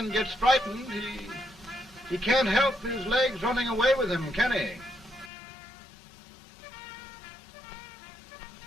gets frightened, he can't help his legs running away with him, can he?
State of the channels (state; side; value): drops out; right; at 5.3 s